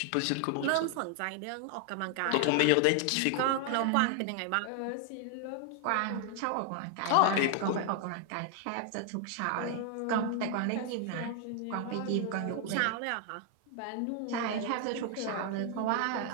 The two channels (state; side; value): different; both; correlation 0.00